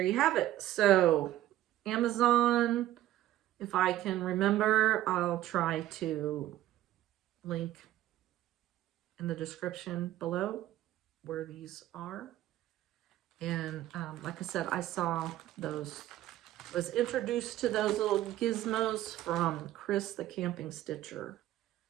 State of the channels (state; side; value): quieter; left; 14.1 dB